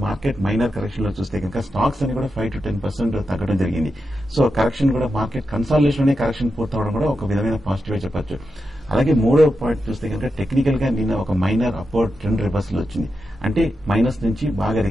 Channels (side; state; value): both; normal; correlation 0.88